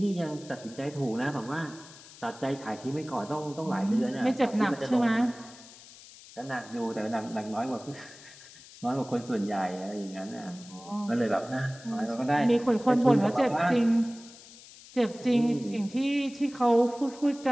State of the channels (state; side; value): noise; left; hiss, 20 dB below the sound